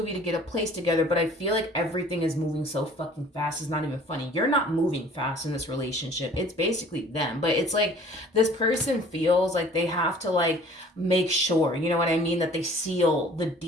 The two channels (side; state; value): both; normal; correlation 0.51